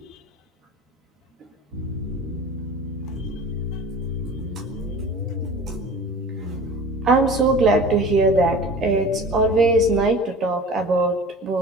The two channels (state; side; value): normal; both; correlation 0.40